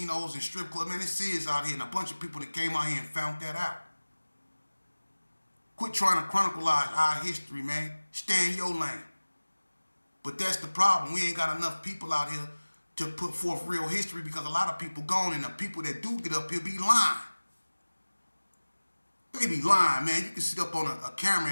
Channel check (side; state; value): both; inverted; correlation -1.00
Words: and strip clubs, man. It's serious out here, and a bunch of people that came out here and found that out. Quit trying to chronicleize our history, man. Stay in your lane. But that's the problem. We ain't got enough people out here to put forth real history because a lot of people gone, and the people that do get up here be lying. They be lying, man. You can sit up on a camera